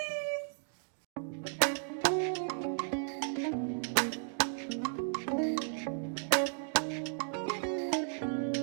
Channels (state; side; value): silent; left; digital silence